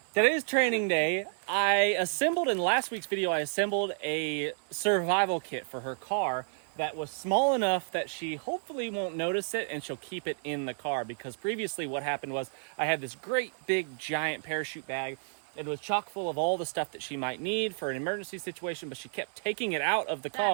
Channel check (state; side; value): silent; left; digital silence